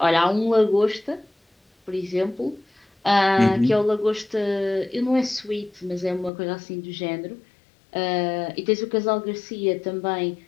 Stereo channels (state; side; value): drops out; right; at 6.3 s